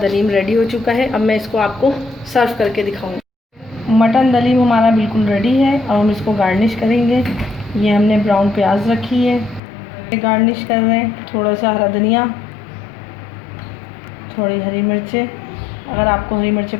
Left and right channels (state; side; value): drops out; right; at 9.6 s